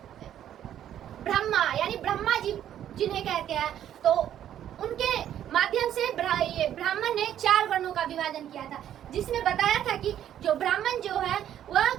ब्रह्मा, यानी ब्रह्मा जी जिन्हें कहते हैं, तो उनके माध्यम से ब्राह्मण ने 4 वर्णों का विभाजन किया था, जिसमें बताया था कि जो ब्राह्मण जो है वह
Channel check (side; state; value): left; quieter; 10.8 dB